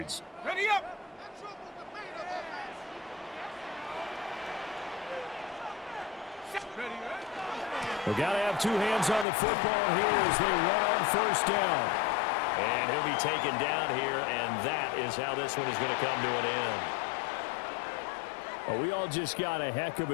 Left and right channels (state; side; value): drops out; right; at 9.2 s